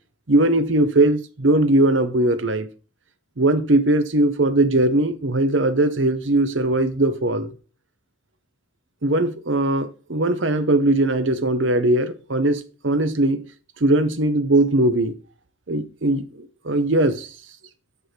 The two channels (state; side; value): normal; both; correlation 0.24